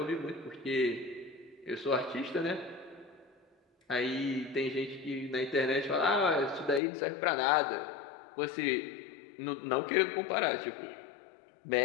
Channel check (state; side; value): drops out; right; at 6.8 s